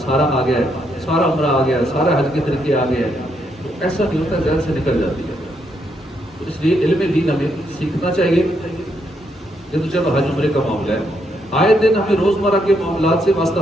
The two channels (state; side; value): normal; both; correlation 0.76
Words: آ گیا ہے، سارا عمرہ آ گیا ہے، سارا حج کے طریقے آ گئے ہیں، تو ایسا نہیں ہوتا، ذہن سے نکل جاتی ہے۔ تو اس لیے علم دین ہمیں سیکھنا چاہیے۔ یہ تو چلو حج عمرے کا معاملہ ہے، آئے دن ہمیں روزمرہ کے معاملات سے واسطہ